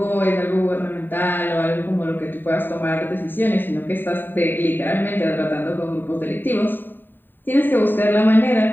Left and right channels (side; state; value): right; late; 0.093 ms